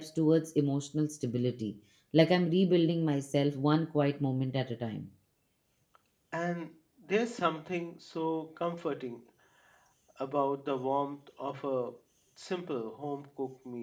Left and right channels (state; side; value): identical; both; correlation 1.00